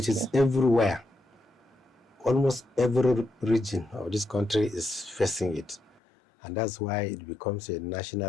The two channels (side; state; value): right; drops out; at 6.0 s